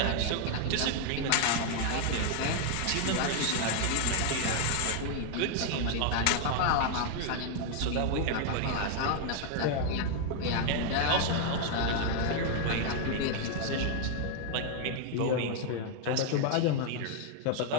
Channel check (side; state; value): both; different; correlation 0.00